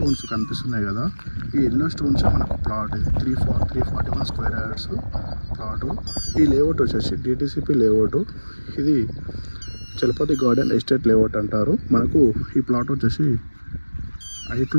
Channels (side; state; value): both; inverted; correlation -1.00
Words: కనిపిస్తున్నాయి కదా, ఈ ఎల్లో స్టోన్స్ మనకు ప్లాట్ ఇది 341 స్క్వేర్ యార్డ్స్ ప్లాటు. ఈ లేఅవుట్ వచ్చేసి డిటిసిపి లేఅవుట్. ఇది చలపతి గార్డెన్ ఎస్టేట్ లేఅవుట్ అంటారు. మనకు ఈ ప్లాట్ వచ్చేసి